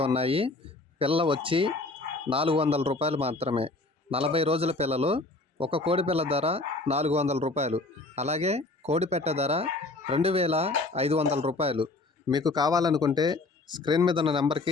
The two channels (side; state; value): right; quieter; 3.2 dB